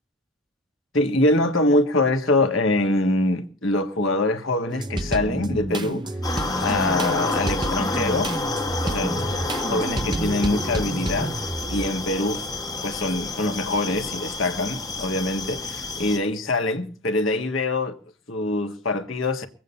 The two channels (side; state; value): both; normal; correlation 0.34